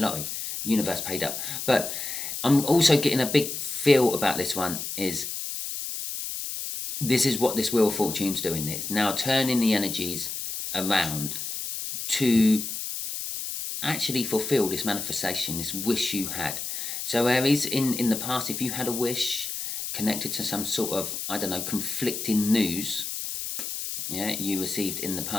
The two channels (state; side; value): noise; left; hiss, 5 dB below the sound